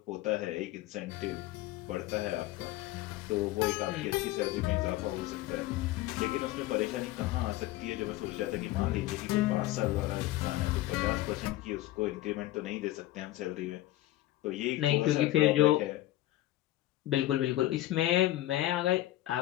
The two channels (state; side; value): quieter; right; 15.6 dB